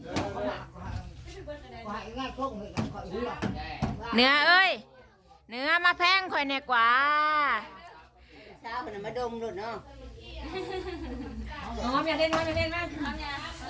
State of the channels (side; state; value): both; identical; correlation 1.00